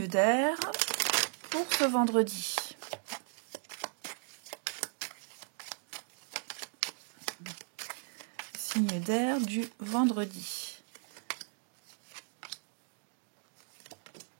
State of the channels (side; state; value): left; silent; 54 dB below the other